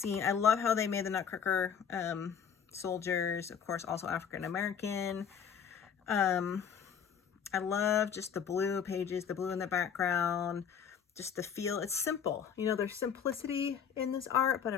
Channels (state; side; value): quieter; right; 7.5 dB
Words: I love how they made the Nutcracker soldiers, of course, also African-American. I love just the blue pages, the blue in the background, just the feel. It's simple. You know, there's simplicity in this art, but